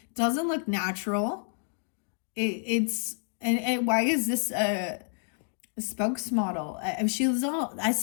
It doesn't look natural. Why is this a spokesmodel? She was all, I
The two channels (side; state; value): right; silent; digital silence